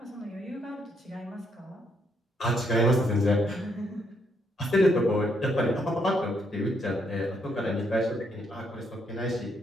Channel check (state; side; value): normal; both; correlation 0.74